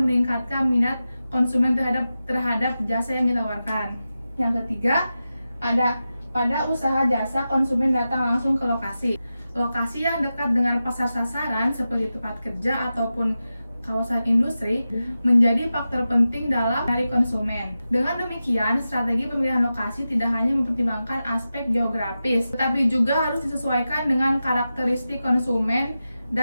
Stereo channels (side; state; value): both; inverted; correlation -0.92